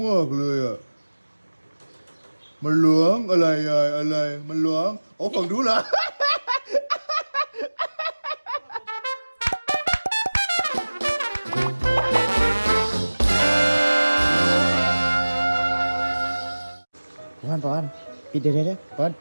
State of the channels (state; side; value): inverted; both; correlation -1.00